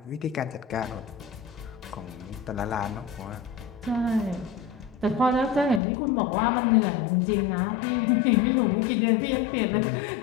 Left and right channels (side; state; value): right; drops out; at 5.8 s